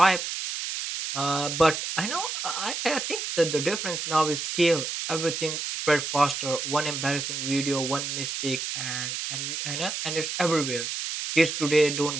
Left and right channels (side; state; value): right; noise; hiss, 4 dB below the sound